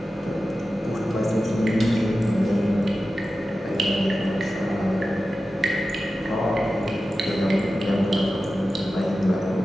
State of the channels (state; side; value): normal; both; correlation 0.93